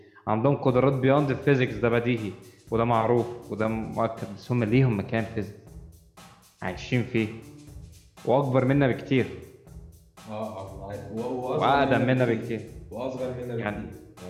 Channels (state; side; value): identical; both; correlation 1.00